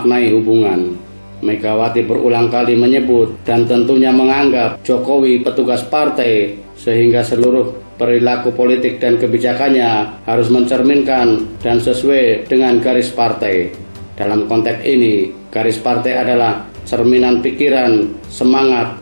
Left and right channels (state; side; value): inverted; both; correlation -1.00